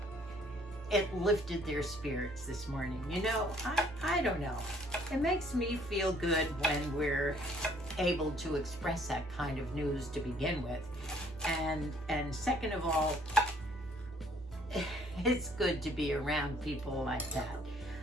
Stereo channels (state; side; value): normal; both; correlation 0.61